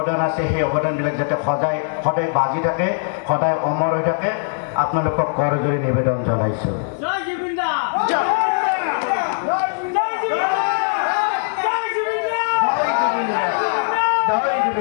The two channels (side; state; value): right; silent; 63 dB below the other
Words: আছে সেই অৱদানবিলাক যাতে সদায় বাজি থাকে সদায় অমৰ হৈ থাকে আপোনালোকক কৰজোৰে নিবেদন জনাইছো জয় জুবিন্দা